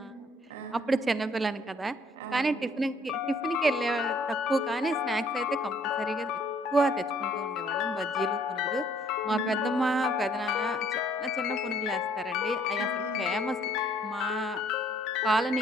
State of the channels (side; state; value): both; normal; correlation 0.62